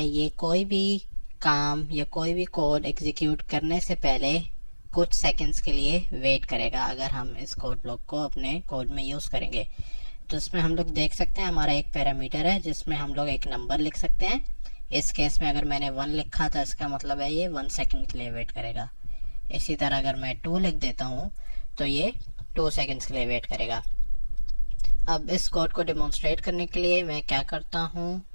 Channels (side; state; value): both; inverted; correlation -1.00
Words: ये कोई भी काम या कोई भी कोड एग्जीक्यूट करने से पहले कुछ सेकंड्स के लिए वेट करेगा अगर हम इस कोड ब्लॉक को अपने कोड में यूज़ करेंगे। तो इसमें हम लोग देख सकते हैं हमारा एक पैरामीटर है जिसमें हम लोग एक नंबर लिख सकते हैं। इस केस में अगर मैंने 1 लिखा था इसका मतलब है ये 1 सेकंड के लिए वेट करेगा। इसी तरह अगर मैं 2 लिख देता हूँ तो ये 2 सेकंड्स के लिए वेट करेगा। अब इस कोड को डेमोन्स्ट्रेट करने के लिए मैं क्या करता हूँ,